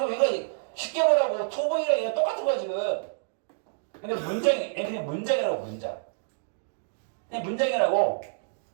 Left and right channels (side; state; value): left; silent; digital silence